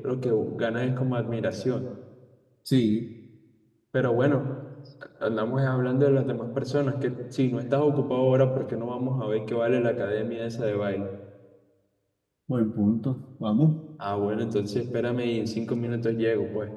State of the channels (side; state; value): both; identical; correlation 1.00